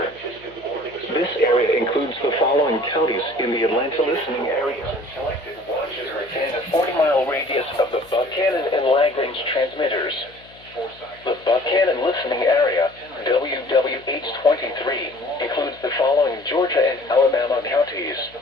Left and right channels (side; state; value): left; noise; hum, 26 dB below the sound